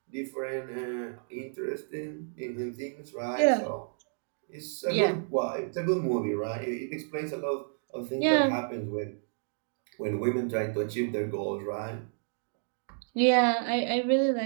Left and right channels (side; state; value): left; silent; digital silence